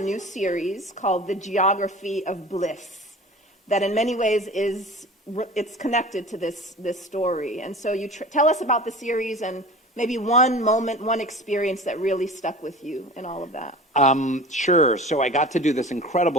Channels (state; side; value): normal; both; correlation 0.38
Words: series called The Geography of Bliss, that in many ways it's connected to this story. And so you tell us about the series and maybe one moment, one experience that really stuck with you in all of that. Sure. So I got to do this